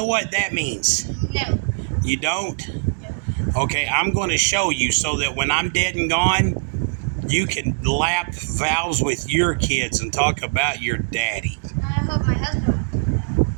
what that means? No. You don't? No. Okay, I'm going to show you so that when I'm dead and gone, you can lap valves with your kids and talk about your daddy. I hope my husband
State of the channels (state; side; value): silent; left; digital silence